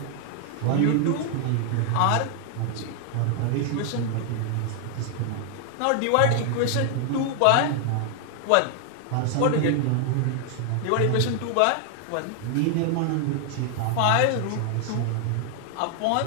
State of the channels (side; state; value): both; different; correlation 0.00